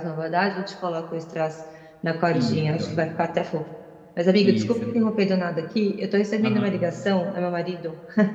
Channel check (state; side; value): identical; both; correlation 1.00